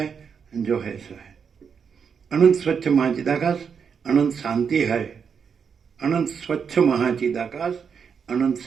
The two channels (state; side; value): quieter; left; 6.6 dB